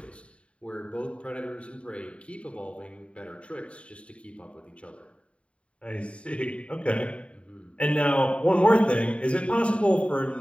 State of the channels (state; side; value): late; right; 0.061 ms